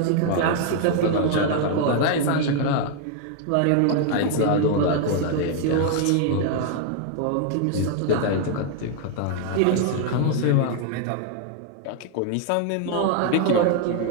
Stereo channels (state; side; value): different; both; correlation 0.00